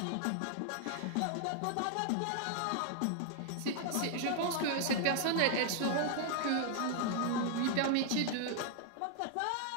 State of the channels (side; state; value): both; different; correlation 0.00